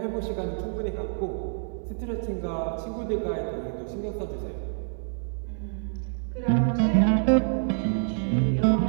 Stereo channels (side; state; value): left; silent; digital silence